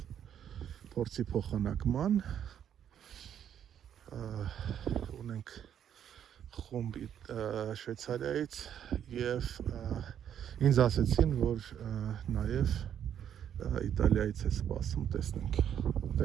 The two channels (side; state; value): left; quieter; 9.4 dB